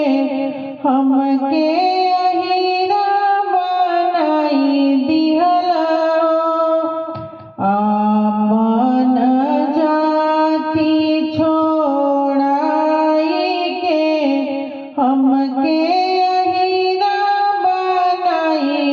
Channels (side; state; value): both; identical; correlation 1.00